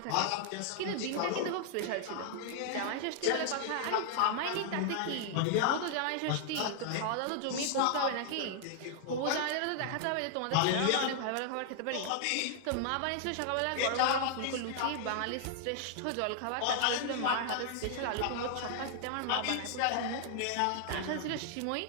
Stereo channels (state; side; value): different; both; correlation 0.00